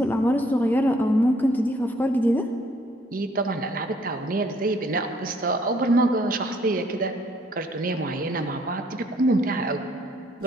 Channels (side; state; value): both; normal; correlation 0.64